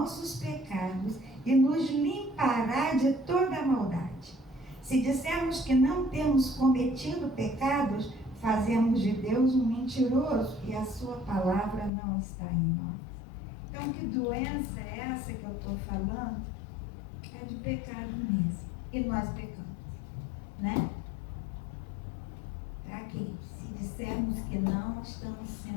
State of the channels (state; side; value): drops out; right; at 11.9 s